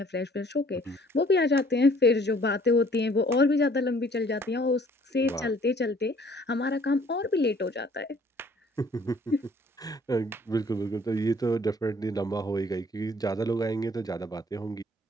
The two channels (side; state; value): both; normal; correlation 0.58